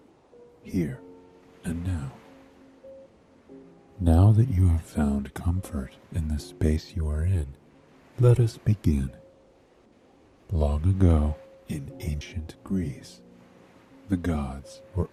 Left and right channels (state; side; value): identical; both; correlation 1.00